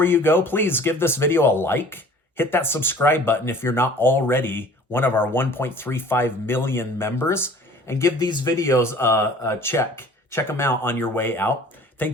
you go, please give this video a like. Hit that subscribe button if you're not already one of our 1.35 million members, and give these videos a check. Check them out on your way out.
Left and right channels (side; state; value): both; normal; correlation 0.49